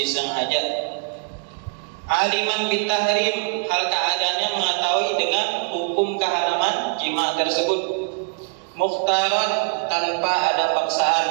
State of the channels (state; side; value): quieter; left; 38.7 dB